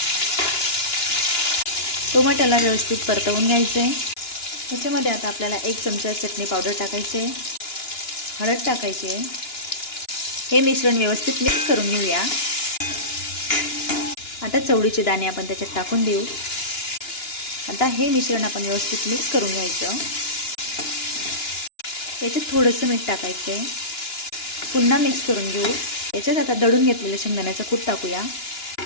टोमॅटोला व्यवस्थित परतवून घ्यायचं आहे. त्याच्यामध्ये आता आपल्याला 1 चमचा चटणी पावडर टाकायची आहे, हळद टाकायची आहे. हे मिश्रण व्यवस्थित मिक्स करून घेऊया. आता चवळीचे दाणे आपण त्याच्यात टाकून देऊ. आता हे मिश्रण आपण व्यवस्थित मिक्स करून घ्यायचं. याच्यात थोडंसं मीठ टाकायचं आहे. पुन्हा मिक्स करून घेऊ. याच्यात आता दळून घेतलेलं शेंगदाण्याचं कूट टाकूया.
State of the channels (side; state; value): right; late; 2.9 ms